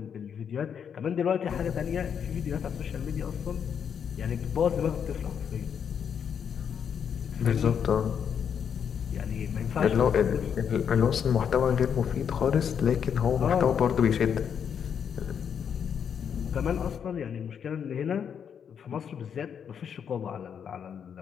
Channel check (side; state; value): right; quieter; 7.7 dB